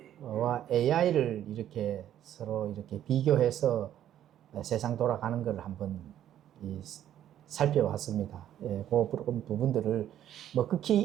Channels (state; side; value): quieter; left; 11.2 dB